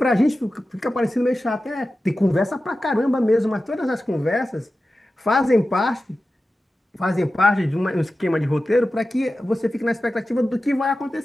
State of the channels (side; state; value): both; normal; correlation 0.93